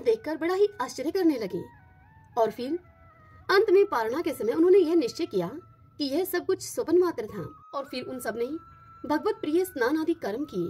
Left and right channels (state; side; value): identical; both; correlation 1.00